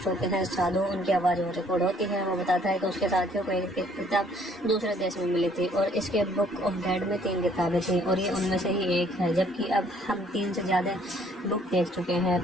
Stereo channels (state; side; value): normal; both; correlation 0.62